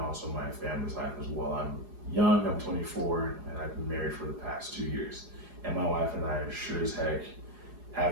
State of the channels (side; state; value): left; late; 4.8 ms